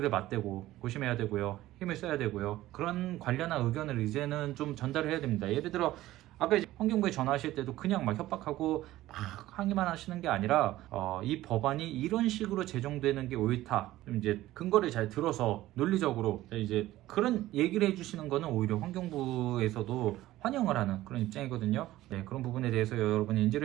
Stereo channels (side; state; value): left; quieter; 15.7 dB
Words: 맞대고 고심해야 되고요. 힘을 써야 되고요. 그런 관련한 의견을 이제는 좀 전달을 해야 됩니다. 예를 들어 아까 이제 환경부에 전화하실 때도 그냥 막 협박하고 막 항의만 하시는 게 아니라 이 법안이 이런 식으로 제정되는 게 옳다. 좀 이제 근거를 잘 들어서 논리적으로 이제 그런 얘기를 해주시는 거는 오히려 환경부에서도 환영을 하는 그런 입장이거든요. 네, 그런 부분에 대해서 여러분이